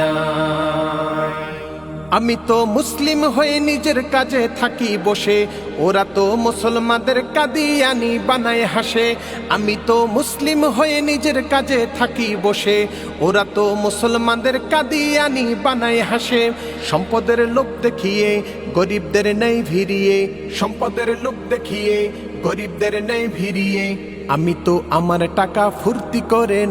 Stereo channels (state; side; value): noise; right; rumble, 28 dB below the sound